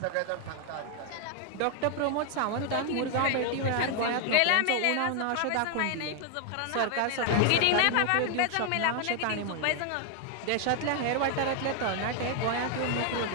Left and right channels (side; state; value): both; different; correlation 0.00